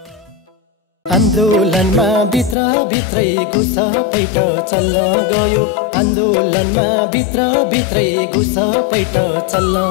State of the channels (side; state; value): right; drops out; at 2.6 s